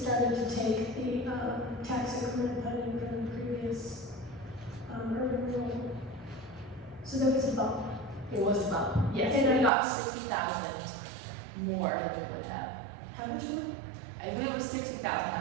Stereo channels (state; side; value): drops out; left; at 9.7 s